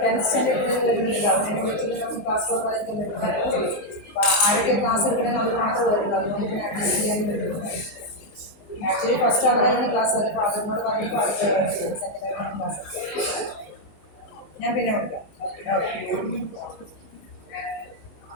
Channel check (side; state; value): right; late; 19 ms